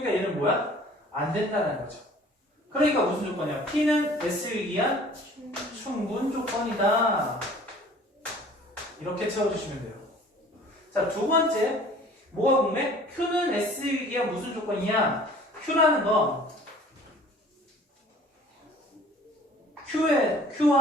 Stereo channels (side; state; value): both; normal; correlation 0.50